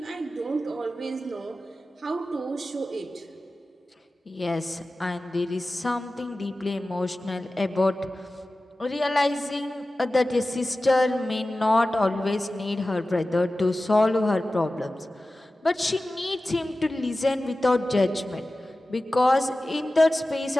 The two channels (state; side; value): normal; both; correlation 0.95